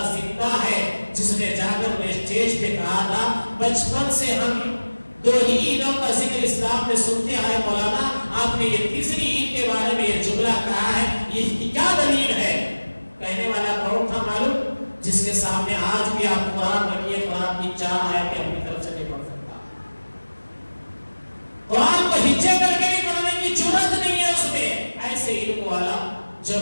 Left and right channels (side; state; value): both; inverted; correlation -1.00